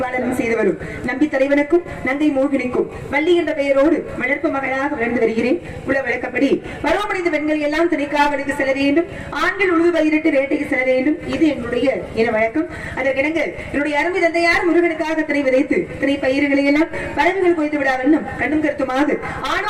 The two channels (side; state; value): both; identical; correlation 1.00